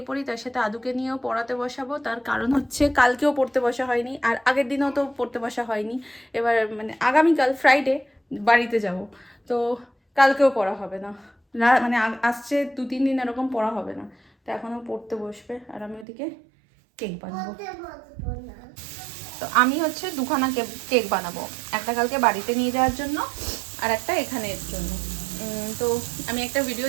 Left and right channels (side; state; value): left; drops out; at 16.1 s